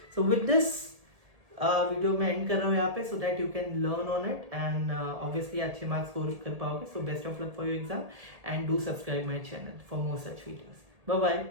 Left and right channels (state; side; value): late; left; 1.8 ms